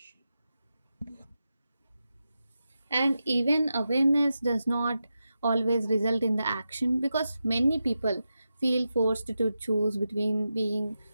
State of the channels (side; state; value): both; inverted; correlation -0.90